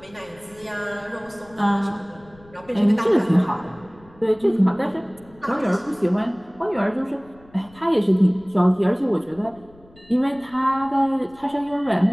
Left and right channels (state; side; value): noise; left; rumble, 26 dB below the sound